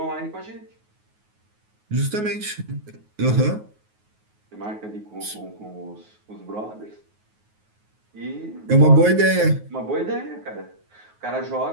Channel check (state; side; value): late; left; 9.4 ms